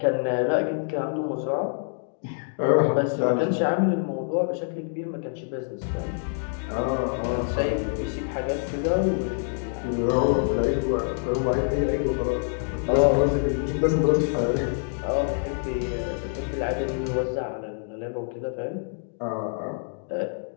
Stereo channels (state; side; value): silent; right; digital silence